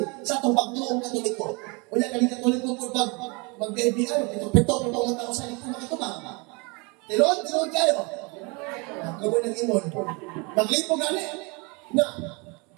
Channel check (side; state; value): left; quieter; 29.7 dB